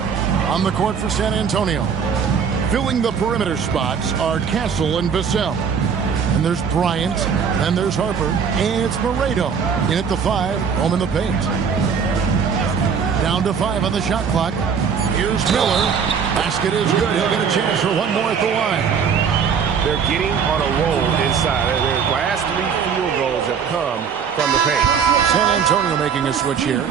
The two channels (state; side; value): quieter; left; 6.6 dB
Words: On the court for San Antonio. Filling the perimeter spots are Castle and Vassell. And there's Bryant. Then there's Harper. And it's Moreto. In at the 5. Home in the paint. Down to 5 on the shot clock. Here's Miller. Basket is good. He'll get a chance for one more at the line. They're getting on a roll inside. Their last 3 field goals have come from the paint. San Antonio making a switch here.